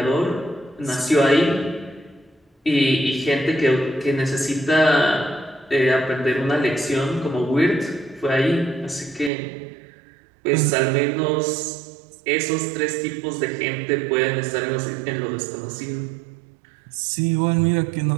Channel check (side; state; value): left; drops out; at 9.3 s